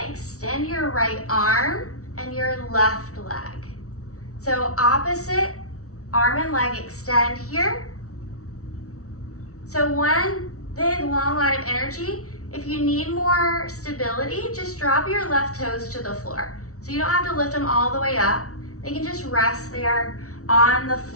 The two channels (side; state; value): right; late; 0.64 ms